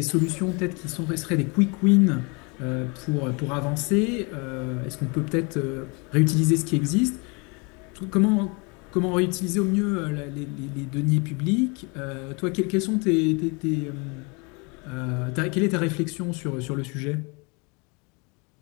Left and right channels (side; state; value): right; quieter; 30.8 dB